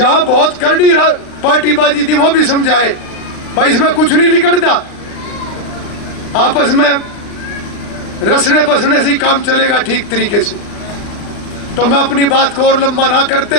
बहुत करड़ी पार्टीबाजी थी वो भी समझाए भाई इसमें कुछ नहीं निकलता, आपस में रसने बसने से ही काम चलेगा ठीक तरीके से। तो मैं अपनी बात को और लंबा ना करते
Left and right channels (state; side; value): late; right; 39 ms